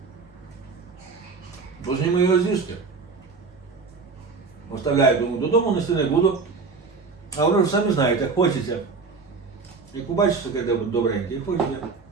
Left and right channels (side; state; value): left; quieter; 4.6 dB